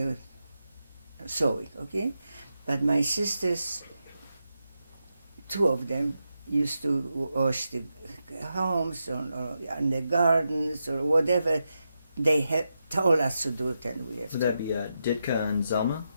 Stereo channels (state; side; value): inverted; both; correlation -0.87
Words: sewing, okay? But my sisters, two of them, used to wash the homes or in the gardens or whatever they had told us to do it, and we have Would to. that be Ditka and Zelma?